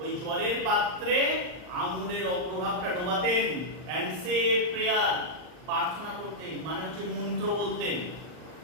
ওই জলের পাত্রে আঙুলের অগ্রভাগটা ডোবাতেন, এন্ড সে প্রেয়ার প্রার্থনা করতেন মানে হচ্ছে মন্ত্র বলতেন।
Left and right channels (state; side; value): late; left; 39 ms